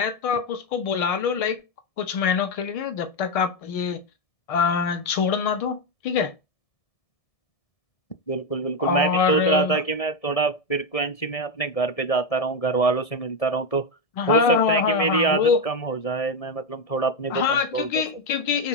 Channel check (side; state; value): right; late; 1.7 ms